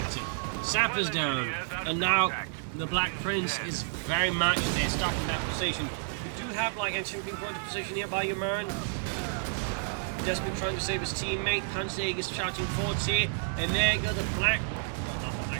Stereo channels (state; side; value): silent; left; digital silence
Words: Sapper's down, and now the Black Prince is very much there, stuck in that position. We do have like actually being put into position here by Umirin. Desperately trying to save his teammate. Panzerjaeger is charging forwards here, and there you go, the Black,